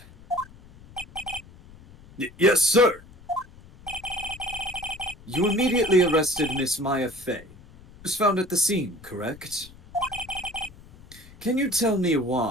Yes, sir. You immediately arrested Miss Maya Fey. Was found at the scene, correct? Can you tell me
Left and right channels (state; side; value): noise; left; rumble, 22 dB below the sound